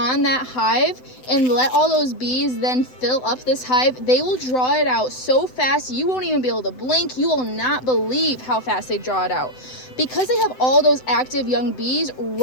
that hive and let all those bees then fill up this hive, they will draw it out so fast you won't even be able to blink. You will not believe how fast they draw it out. Because they have all those active young bees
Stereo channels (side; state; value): right; late; 7.9 ms